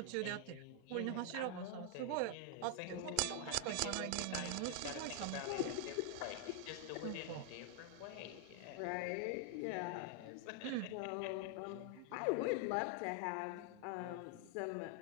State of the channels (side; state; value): both; different; correlation 0.00